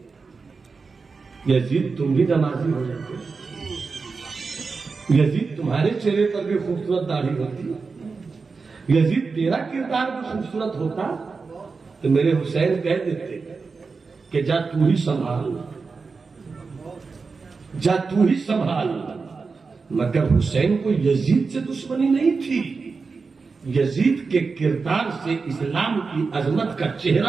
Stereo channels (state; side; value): quieter; left; 4.6 dB